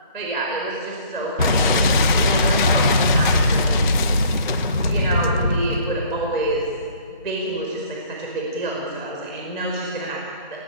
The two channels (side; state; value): both; inverted; correlation -0.54